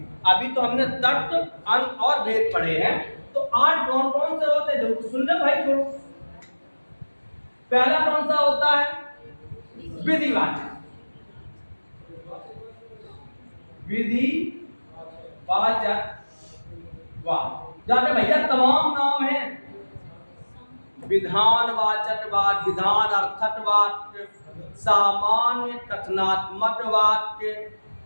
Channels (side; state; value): both; inverted; correlation -1.00